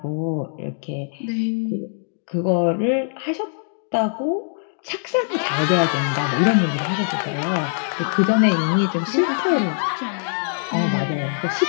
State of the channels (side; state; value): right; silent; digital silence